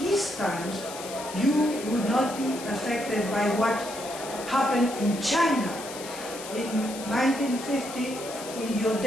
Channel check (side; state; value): left; noise; hiss, 12 dB below the sound